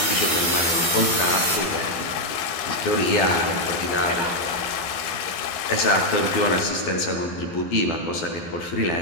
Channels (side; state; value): right; late; 12 ms